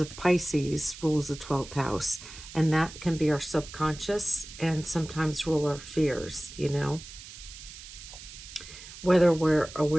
Pisces rules the 12th house, and that can be our subconscious and sometimes rule our fears, whether we're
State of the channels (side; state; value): right; noise; hiss, 15 dB below the sound